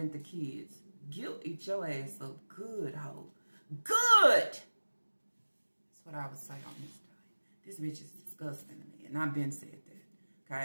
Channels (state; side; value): inverted; both; correlation -1.00